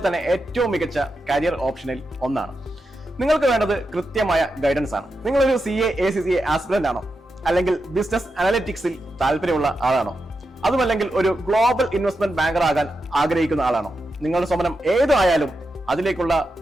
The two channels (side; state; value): both; normal; correlation 0.87